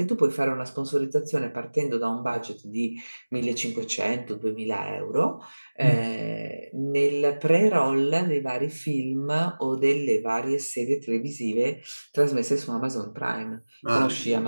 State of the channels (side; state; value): both; inverted; correlation -1.00